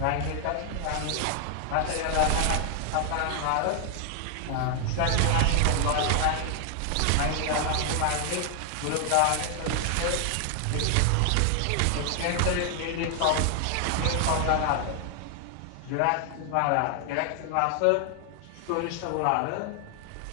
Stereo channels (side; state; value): both; different; correlation 0.00